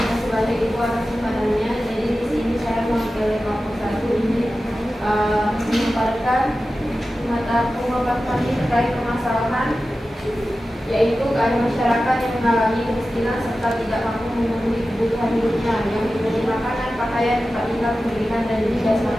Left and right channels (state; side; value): normal; both; correlation 0.94